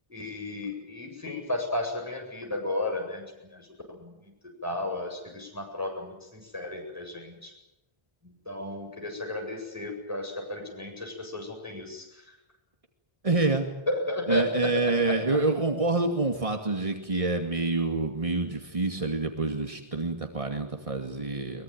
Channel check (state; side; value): late; left; 1.6 ms